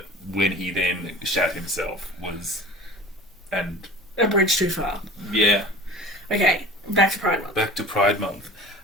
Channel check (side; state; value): both; normal; correlation 0.39